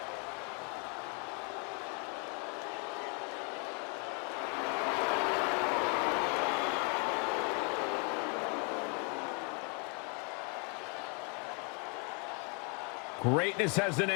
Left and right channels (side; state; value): right; quieter; 34.5 dB